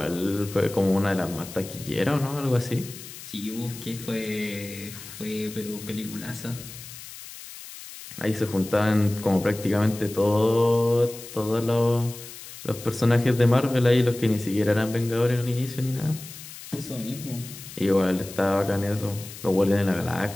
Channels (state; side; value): noise; left; hiss, 14 dB below the sound